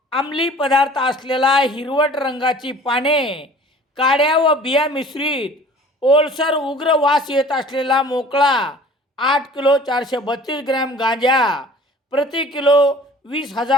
अंमली पदार्थ असलेला हिरवट रंगाची पाने, काड्या व बिया मिश्रित ओलसर उग्र वास येत असलेला मोकळा 8 किलो 432 ग्रॅम गांजा, प्रति किलो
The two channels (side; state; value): both; normal; correlation 0.47